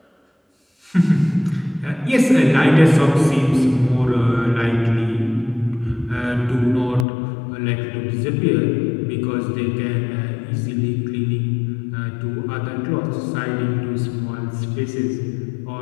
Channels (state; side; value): drops out; right; at 7.1 s